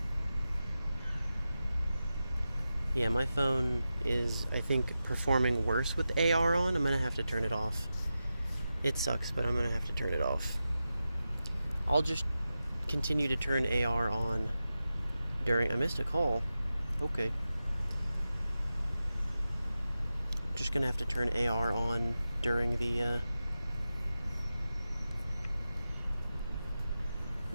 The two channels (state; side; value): inverted; both; correlation -0.92